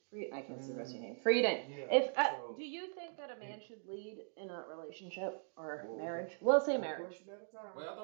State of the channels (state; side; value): silent; left; digital silence